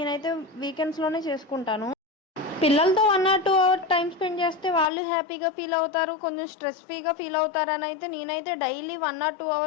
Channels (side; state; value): right; drops out; at 4.9 s